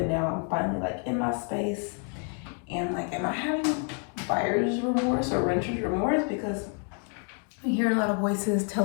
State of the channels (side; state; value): right; quieter; 39.8 dB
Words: now I'm finally like in my space. And like, am I having buyer's remorse or renter's remorse? Because I'm hearing a lot of voices